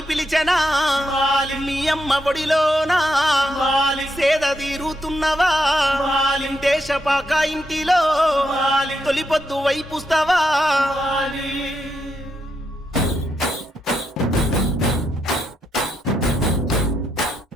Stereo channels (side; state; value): both; normal; correlation 0.80